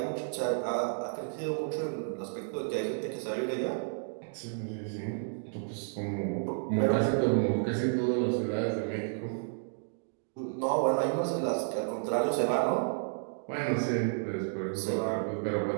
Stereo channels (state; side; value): silent; left; digital silence